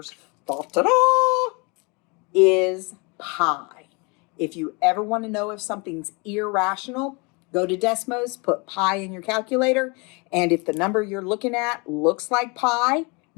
is pi. If you ever want to know if something's irrational, go to Desmos, put pi in your calculator, and if the number you're looking at looks like pi,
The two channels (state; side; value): quieter; right; 30.0 dB